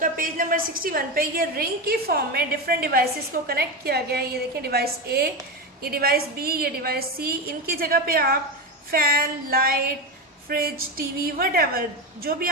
पेज नंबर 61 पे ये रिंग की फॉर्म में डिफरेंट डिवाइसेस को कनेक्ट किया गया है. ये देखिए डिवाइस ए, ये डिवाइस बी, ये डिवाइस सी. इनकी जगह पे आप fan, light, fridge, TV, whatever जो भी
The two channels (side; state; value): both; normal; correlation 0.16